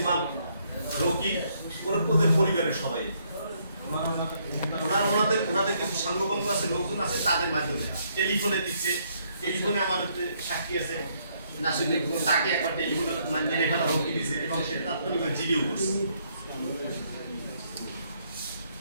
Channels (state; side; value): inverted; both; correlation -0.71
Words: ইমাম, রকি, ওদের পরিবারের সবাই ওনাদের কিছু সাঙ্গপাঙ্গ আছে, লোকজন আছে, তাদের মাধ্যমে টেলিফোনে দিচ্ছে। টেলিফোনে আমাদের সাক্ষী আছে নাসিরুদ্দিন, তাকে একবার টেলিফোনে মেরে ফেলা হুমকি দিচ্ছে এবং সে তাৎক্ষণিক জিডিও করছে।